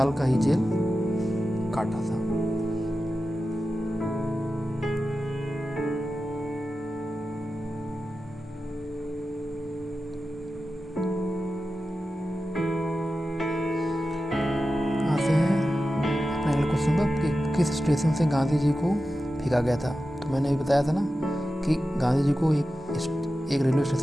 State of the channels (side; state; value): both; normal; correlation 0.92